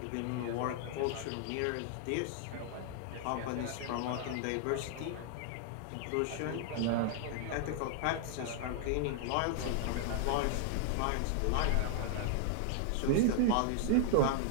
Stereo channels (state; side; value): different; both; correlation 0.00